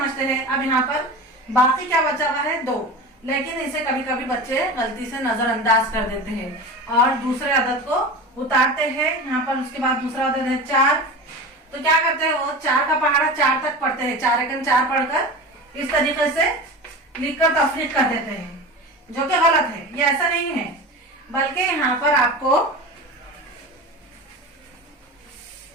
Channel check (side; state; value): both; normal; correlation 0.30